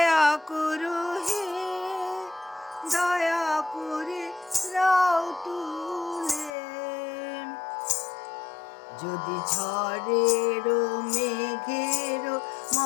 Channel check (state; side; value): drops out; right; at 6.5 s